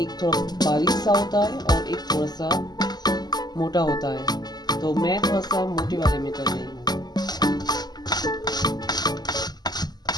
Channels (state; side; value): late; right; 0.20 ms